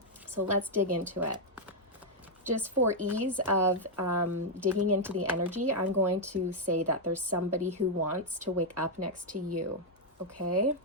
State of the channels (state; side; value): normal; both; correlation -0.01